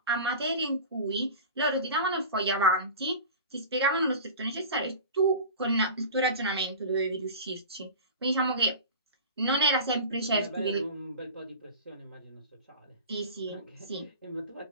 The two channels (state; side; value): inverted; both; correlation -0.34